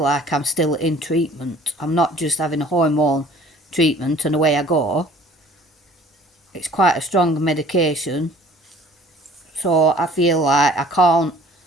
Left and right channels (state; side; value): normal; both; correlation 0.51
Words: I'm still in treatment. I'm not just having a hormone treatment and away I go. It's quite a strong medication. So I feel like I can't